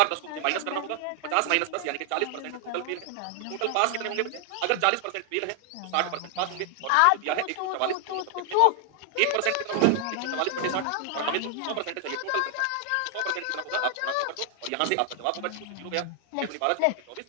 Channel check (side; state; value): both; different; correlation 0.00